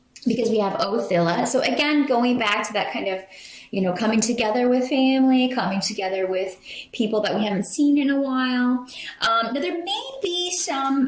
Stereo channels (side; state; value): both; identical; correlation 1.00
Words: because we have Othilla. So again, going back to that kind of, coming together with family, coming together with people that we haven't seen in a while. Now, there may be